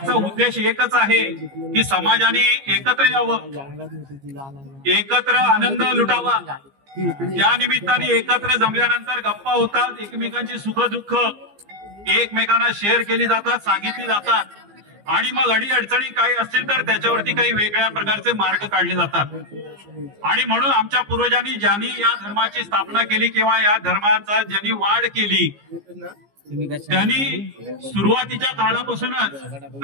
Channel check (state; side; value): late; left; 15 ms